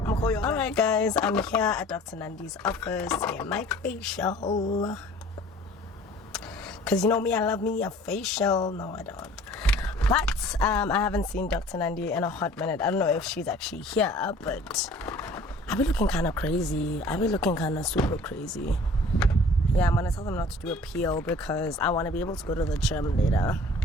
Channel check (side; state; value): both; normal; correlation 0.49